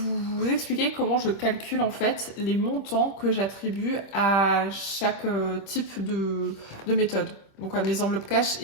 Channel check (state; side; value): late; right; 26 ms